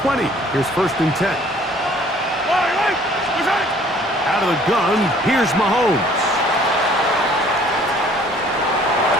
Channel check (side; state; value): both; normal; correlation 0.56